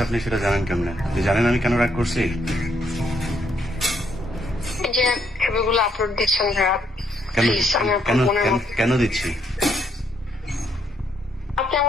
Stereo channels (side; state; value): both; normal; correlation 0.72